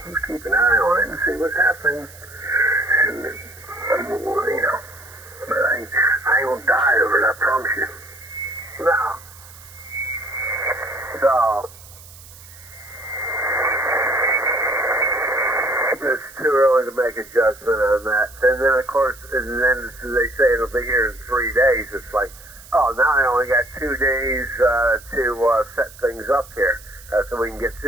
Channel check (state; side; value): noise; right; hiss, 20 dB below the sound